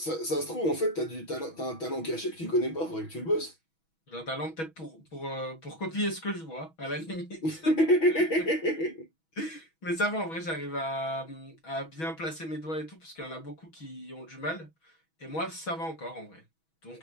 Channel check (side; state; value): right; late; 6.2 ms